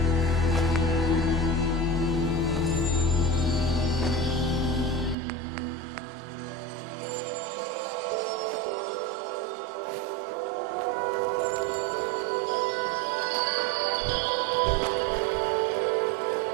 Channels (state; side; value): drops out; left; at 5.2 s